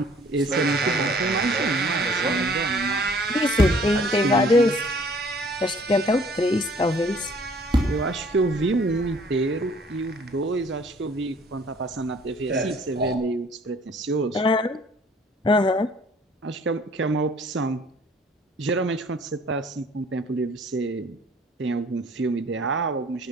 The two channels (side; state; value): both; normal; correlation 0.56